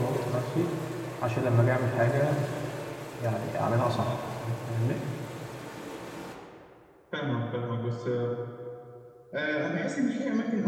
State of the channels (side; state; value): both; identical; correlation 1.00